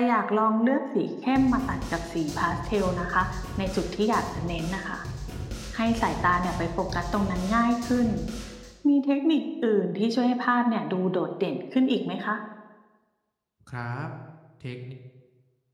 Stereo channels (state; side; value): identical; both; correlation 1.00